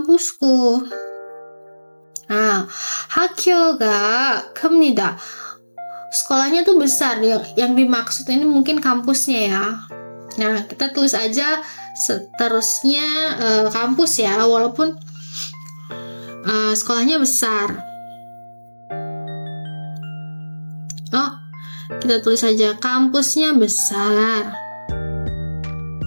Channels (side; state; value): both; inverted; correlation -1.00